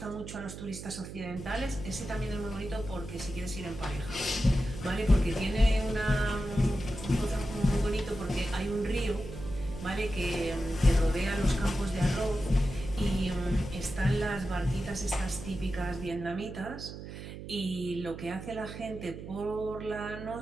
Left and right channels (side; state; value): right; noise; hum, 10 dB below the sound